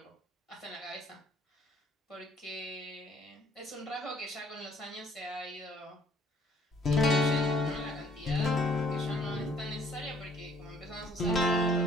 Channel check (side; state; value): both; normal; correlation 0.60